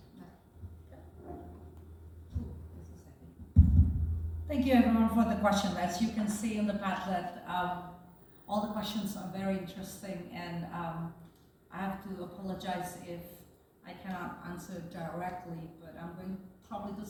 Thank you everyone for the question. As you can see in the Padlet, all the questions are very interesting, and I have to apologize if I cannot answer directly, but I'm going probably to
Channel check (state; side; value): identical; both; correlation 1.00